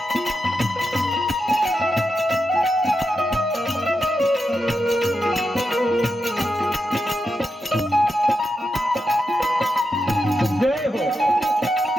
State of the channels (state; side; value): normal; both; correlation 0.87